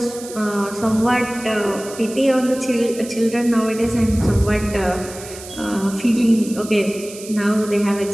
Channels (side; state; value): right; noise; hiss, 15 dB below the sound